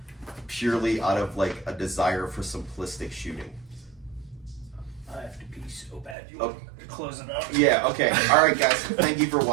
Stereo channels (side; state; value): left; drops out; at 6.2 s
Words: purely out of like a desire for simplistic shooting. I have to pee so bad. You want to close it up? Yeah, okay. All right, guys. Thank you for